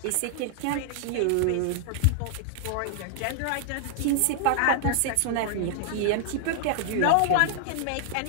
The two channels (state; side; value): different; both; correlation -0.01